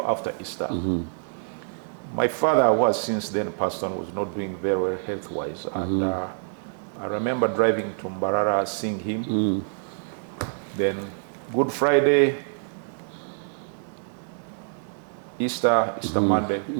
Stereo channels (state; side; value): silent; left; 61 dB below the other